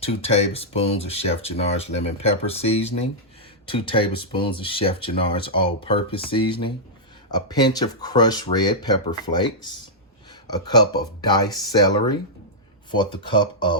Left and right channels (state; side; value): normal; both; correlation -0.09